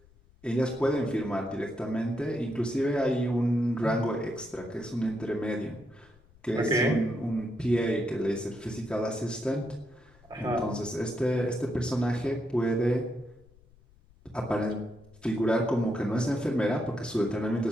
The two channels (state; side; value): noise; left; rumble, 27 dB below the sound